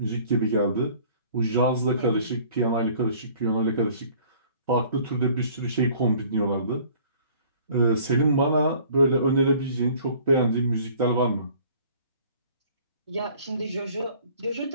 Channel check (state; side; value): inverted; both; correlation -0.52